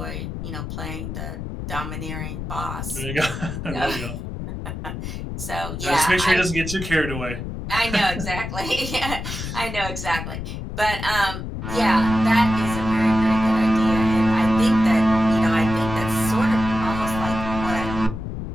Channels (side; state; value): left; noise; rumble, 6 dB below the sound